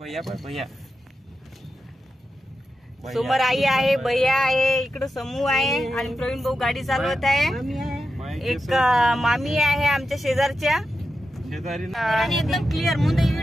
समोर आई आहे, भैया आहे, इकडे समूह आहे आणि प्रवीण भाऊ गाडी चालवत आहे. एक मामी आहे आमच्या शेजारच्या आणि एकदम क्लिअर मुंडे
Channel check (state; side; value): normal; both; correlation 0.90